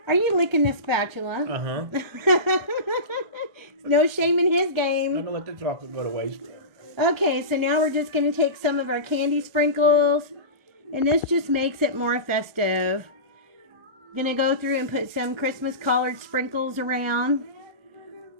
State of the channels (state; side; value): late; left; 1.4 ms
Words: Are you licking the spatula? Uh-huh. No shame in his game. I'm going to let the chocolate go to waste. Okay, so now we're just going to take some of our candy sprinkles. And this just makes it more festive. Going to go through and put some Christmas colored sprinkles around.